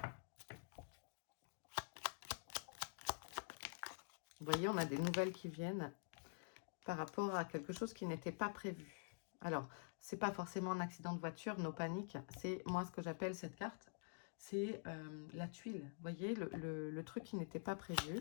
Vous voyez, on a des nouvelles qui viennent par rapport à quelque chose qui n'était pas prévu. Alors, c'est pas forcément un accident de voiture, nos paniques. C'est moi ce que j'appelle cette carte, c'est la tuile. Vous voyez, le truc qui n'était pas prévu.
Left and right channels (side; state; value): right; silent; digital silence